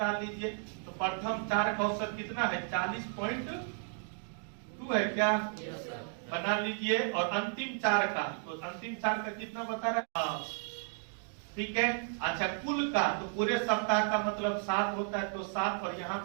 लीजिए। तो प्रथम 4 का औसत कितना है? 40.2 है क्या? बना लीजिए। और अंतिम 4 का, तो अंतिम 4 का कितना बता रहा है? ठीक है। अच्छा, कुल का तो पूरे सप्ताह का मतलब 7 होता है, तो 7 और यहाँ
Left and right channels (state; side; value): silent; left; 55 dB below the other